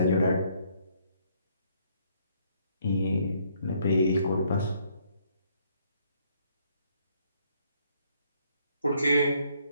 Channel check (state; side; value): inverted; both; correlation -0.68